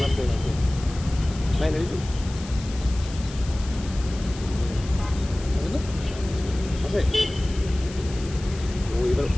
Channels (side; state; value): left; noise; hiss, 16 dB below the sound